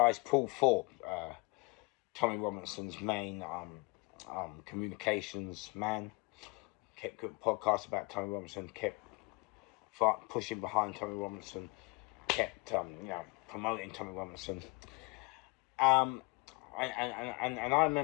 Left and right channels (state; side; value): quieter; right; 28.4 dB